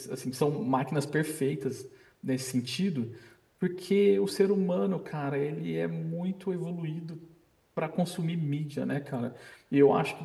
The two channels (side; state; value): both; identical; correlation 1.00